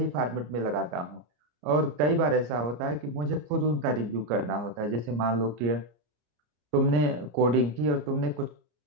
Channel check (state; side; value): late; left; 34 ms